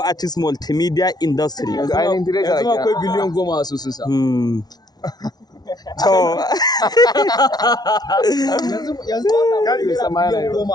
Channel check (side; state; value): right; late; 0.19 ms